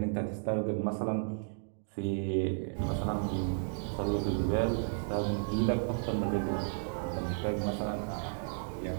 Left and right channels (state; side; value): silent; left; 56 dB below the other